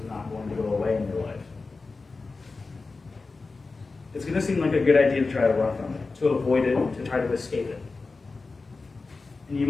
not going to go away in your life. It's going to seem like a good idea to try to run from it, to avoid it, to try to escape it. And you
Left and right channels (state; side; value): quieter; right; 3.9 dB